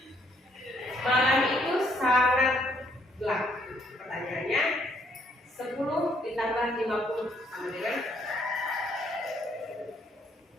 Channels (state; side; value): normal; both; correlation 0.68